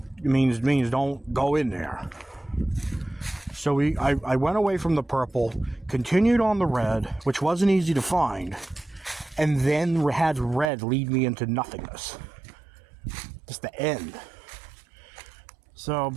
Means don't go in there. So I went away from the purple, continued on the red, which wasn't easy to find, and then had red lead me into nothingness. Just the end. So,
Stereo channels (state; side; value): drops out; left; at 10.7 s